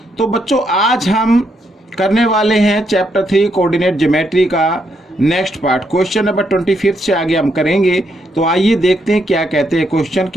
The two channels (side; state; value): both; normal; correlation 0.77